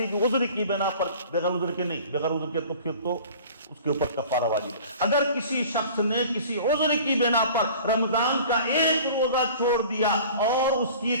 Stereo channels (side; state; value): both; inverted; correlation -0.44